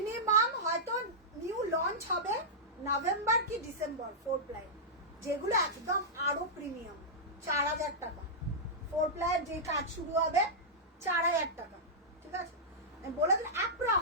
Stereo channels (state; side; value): normal; both; correlation -0.11